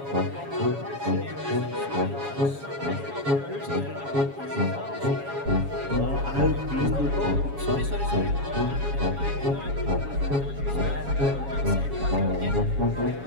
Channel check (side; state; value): left; late; 7.2 ms